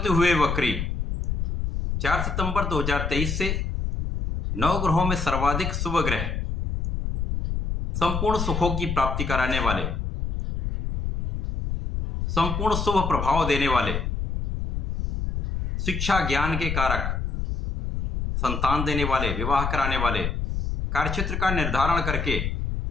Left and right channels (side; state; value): left; noise; rumble, 2 dB below the sound